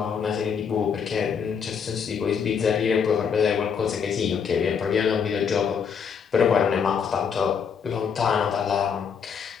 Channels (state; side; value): quieter; right; 6.8 dB